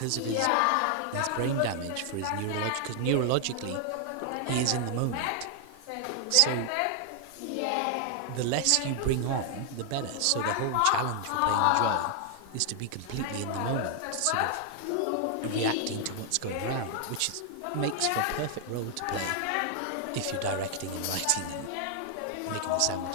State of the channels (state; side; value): different; both; correlation 0.00